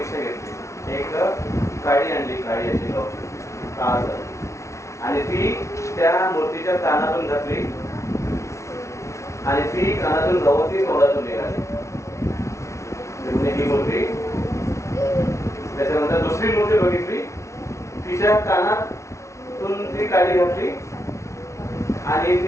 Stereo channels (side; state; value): right; late; 0.14 ms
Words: घेतली एक काडी आणली, काडी अशी गावची काळ झाली आणि ती त्या मूर्तीच्या कानातून घातली आणि ती कानातून गवती तोंडातून निघाली. ही मूर्ती. त्याच्यानंतर दुसरी मूर्ती बघितली, तिच्या कानातून ती काडी घातली आणि